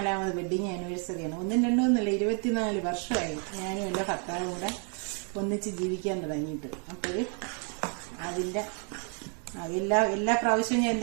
വെഡ്ഡിങ് ആനിവേഴ്സറിയാണ്. 1-2 24 വർഷമായി ഞാനും എൻ്റെ ഭർത്താവും കൂടെ ഒന്നിച്ച് ജീവിക്കാൻ തുടങ്ങിയിട്ട്. അപ്പോൾ അതിൻ്റെ എല്ലാ പ്രാവശ്യവും ഞാൻ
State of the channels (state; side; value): quieter; left; 39.9 dB